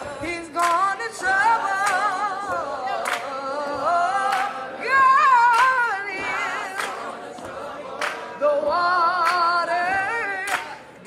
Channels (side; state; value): both; identical; correlation 1.00